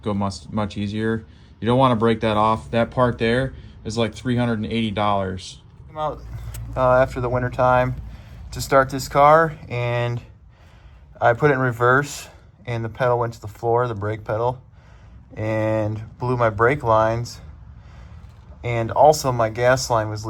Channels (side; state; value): both; identical; correlation 1.00